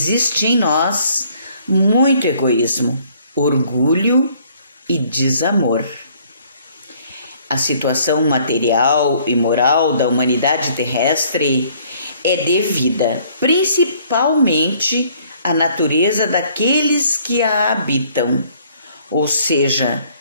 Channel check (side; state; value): both; inverted; correlation -0.61